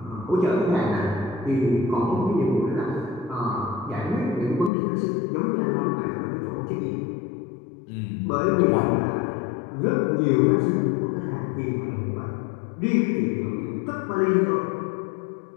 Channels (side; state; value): right; drops out; at 4.7 s